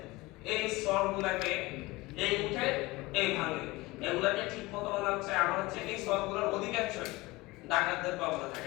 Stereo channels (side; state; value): right; quieter; 21.3 dB